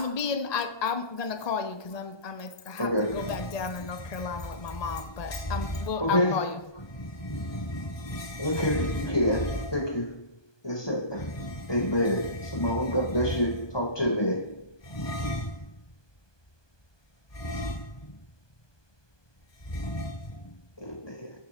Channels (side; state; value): right; late; 1.2 ms